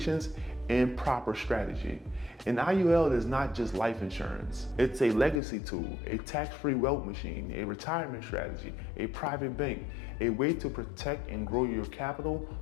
and proper strategy. An IUL is not just life insurance. It's a legacy tool, a tax-free wealth machine, a retirement strategy, a private bank, a way to protect and grow your capital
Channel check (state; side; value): drops out; right; at 5.4 s